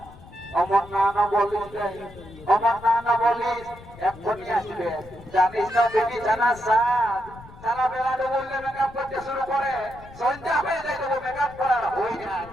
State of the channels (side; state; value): left; noise; rumble, 19 dB below the sound